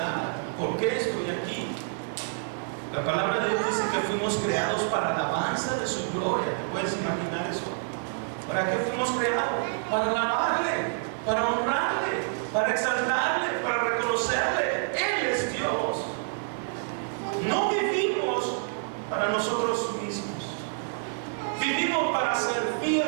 por qué estoy aquí. La palabra de Dios dice que fuimos creados para la alabanza de su gloria. ¿Te puedes imaginar eso? ¿Para qué fuimos creados? Para alabarle, para honrarle, para exaltarle, para reconocerle. Él es Dios. No vivimos para nosotros mismos. Vivimos para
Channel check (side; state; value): left; silent; digital silence